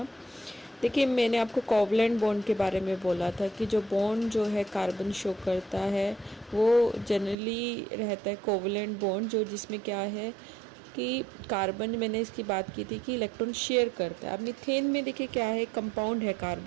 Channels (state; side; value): drops out; left; at 7.4 s